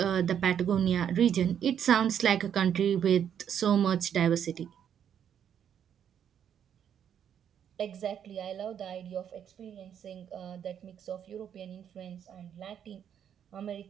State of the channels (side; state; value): left; quieter; 8.9 dB